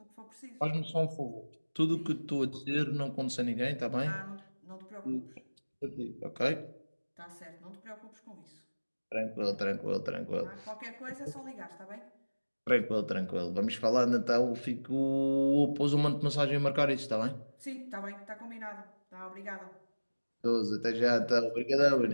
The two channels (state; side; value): inverted; both; correlation -1.00